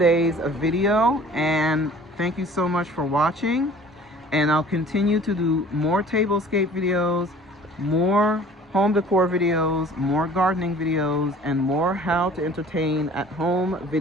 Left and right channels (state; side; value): normal; both; correlation 0.48